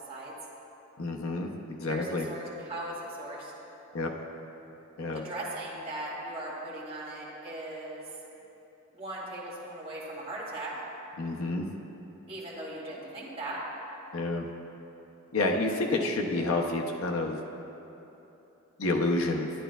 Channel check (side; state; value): both; normal; correlation 0.30